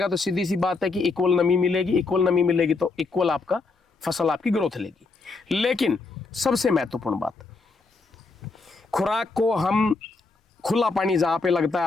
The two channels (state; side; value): quieter; right; 4.0 dB